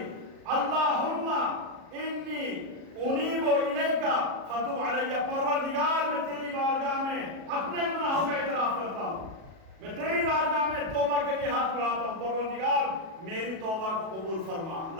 اللہم انی انیب الیکا فتب علی، پروردگار میں تیری بارگاہ میں اپنے گناہوں کا اعتراف کرتا ہوں، میں تیری بارگاہ میں توبہ کے لیے ہاتھ بڑھاتا ہوں، پروردگار میری توبہ کو قبول فرما۔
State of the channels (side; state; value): left; late; 37 ms